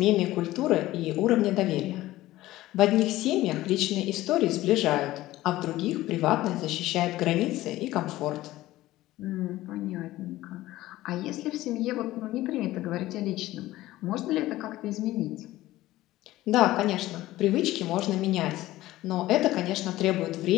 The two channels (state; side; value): quieter; right; 16.4 dB